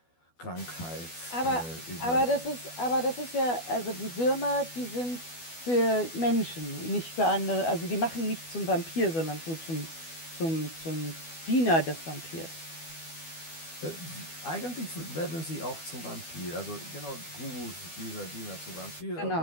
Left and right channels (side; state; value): right; late; 12 ms